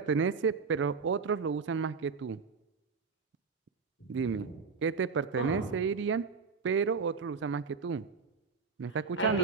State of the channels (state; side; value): quieter; left; 5.1 dB